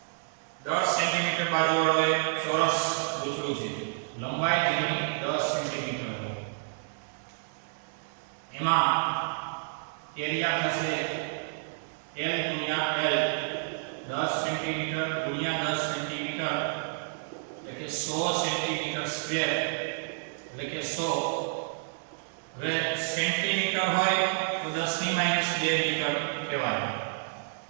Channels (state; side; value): silent; left; digital silence